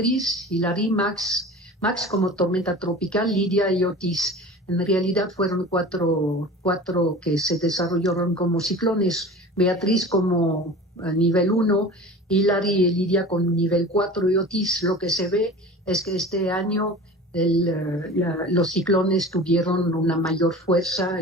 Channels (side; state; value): both; normal; correlation 0.37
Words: Hilary, Max como tormenta tropical, Lidia y Otis. En realidad fueron cuatro que se desarrollaron como ciclones: Beatriz como nivel 1, Hilary y Lidia con nivel 4, y Otis. Lo que se ve es que este año los ciclones tuvieron una mayor fuerza,